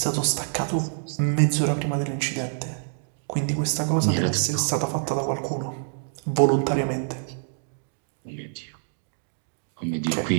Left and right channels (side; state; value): left; silent; digital silence